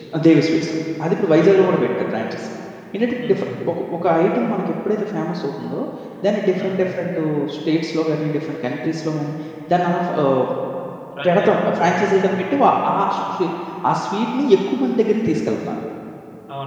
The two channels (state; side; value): identical; both; correlation 1.00